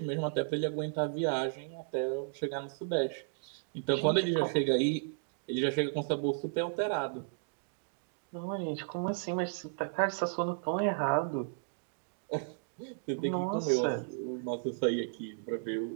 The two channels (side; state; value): left; silent; digital silence